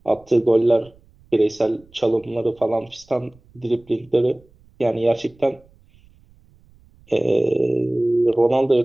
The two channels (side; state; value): right; noise; rumble, 30 dB below the sound